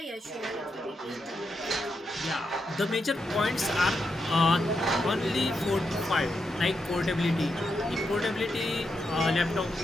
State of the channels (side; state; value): both; normal; correlation 0.84